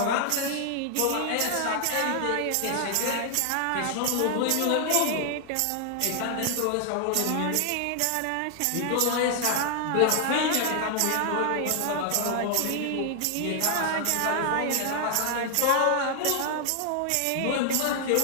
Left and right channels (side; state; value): both; different; correlation 0.00